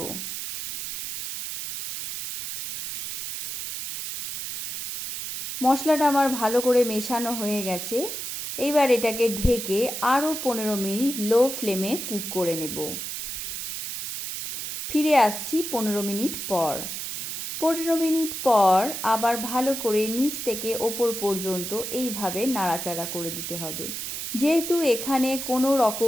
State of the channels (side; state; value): right; noise; hiss, 6 dB below the sound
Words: মশলাটা আমার ভালো করে মেশানো হয়ে গেছে। এইবার এটাকে ঢেকে আরও 15 মিনিট লো ফ্লেমে কুক করে নেব। ফিরে আসছি 15 মিনিট পর। 15 মিনিট পর আবার ভালো করে নিচ থেকে ওপর পর্যন্ত এইভাবে নাড়াচাড়া করে দিতে হবে। যেহেতু এখানে কোনো